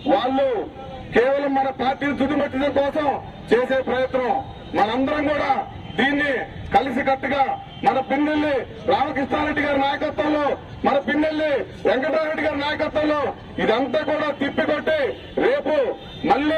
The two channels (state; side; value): identical; both; correlation 1.00